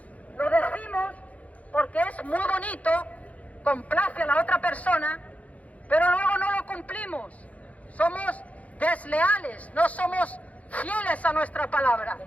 Lo decimos porque es muy bonito, complace a la otra persona, pero luego no lo cumplimos. Somos desleales, no somos fieles a nuestra palabra.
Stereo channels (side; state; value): right; late; 0.068 ms